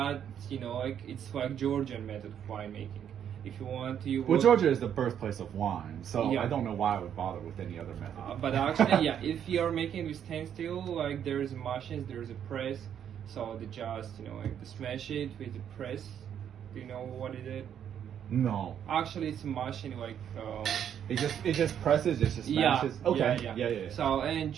like it's like Georgian method of winemaking. If you want to, Well, Georgia is the birthplace of wine, so Yeah. I don't know why I would bother with any other method. But actually, yeah, if you're making with stainless steel, like there's machines, there's a press, so they just like they smash it with the press. Do you know what it is? No, Actually, it's a machine like. it just presses, it just smashes. Okay. Yeah. So and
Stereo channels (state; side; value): quieter; left; 9.1 dB